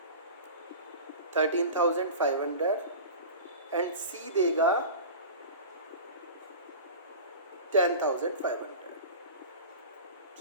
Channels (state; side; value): inverted; both; correlation -0.33